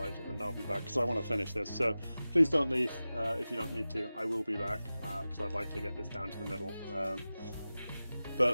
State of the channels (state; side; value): inverted; both; correlation -0.96